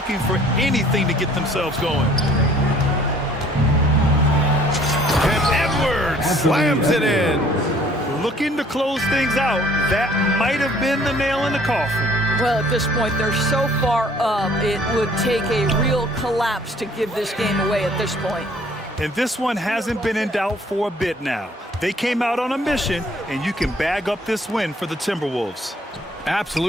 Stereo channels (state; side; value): normal; both; correlation 0.57